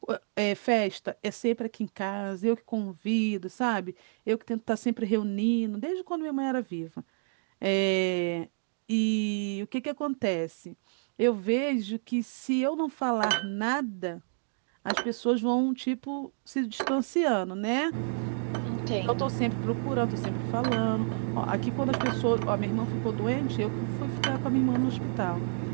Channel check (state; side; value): silent; left; digital silence